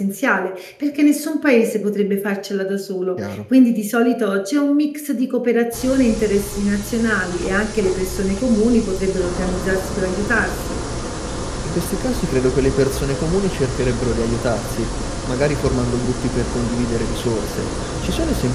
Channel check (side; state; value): both; identical; correlation 1.00